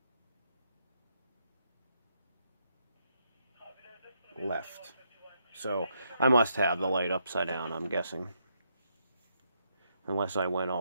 left. So I must have the light upside down, I'm guessing. Unless I went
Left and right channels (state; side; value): inverted; both; correlation -0.77